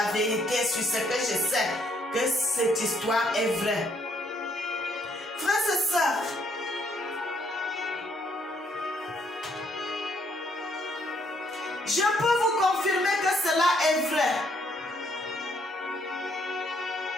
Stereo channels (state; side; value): normal; both; correlation 0.70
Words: vérité sur ce que je sais, que cette histoire est vraie. Frères et sœurs, je peux vous confirmer que cela est vrai.